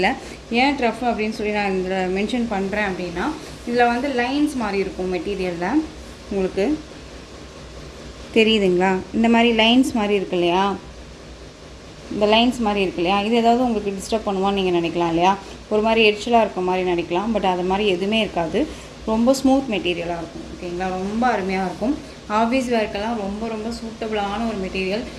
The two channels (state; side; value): identical; both; correlation 1.00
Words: ஏன் ட்ரஃப் அப்படின்னு சொல்லி நான் இதில் மென்ஷன் பண்ணுறேன் அப்படின்னா இதில் வந்து லைன்ஸ் மாதிரி இருக்கும் மெட்டீரியலில். உங்களுக்கு தெரியுதுங்களா, இந்த மாதிரி லைன்ஸ் மாதிரி இருக்கு இல்லையா, இந்த லைன்ஸ் மாதிரி இருக்கு இல்லையா, இது ஏதாவது உங்களுக்கு டிஸ்டர்ப் பண்ணுவான்னு நீங்கள் நினைக்கலாம் இல்லையா, ஒரு மாதிரி எரிச்சலாக இருக்க மாதிரி நினைக்கலாம். பட் அது மாதிரி எதுவுமே இருக்காது, ரொம்ப ஸ்மூத் மெட்டீரியலாக இருக்கும். ஓகேங்களா, ரொம்ப அருமையாக இருக்கும். ஆஃபீஸ் வேர்க்கெல்லாம் ரொம்ப சூட்டபிளான ஒரு மெட்டீரியல்.